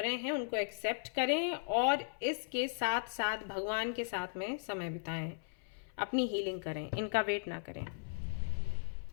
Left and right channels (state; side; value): silent; right; 53 dB below the other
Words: हैं उनको एक्सेप्ट करें, और इसके साथ साथ भगवान के साथ में समय बिताएं। अपनी हीलिंग करें, इनका वेट ना करें।